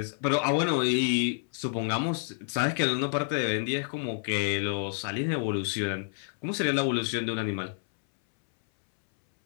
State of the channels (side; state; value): right; silent; 59 dB below the other